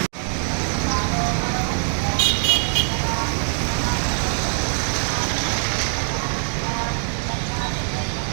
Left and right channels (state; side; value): silent; left; digital silence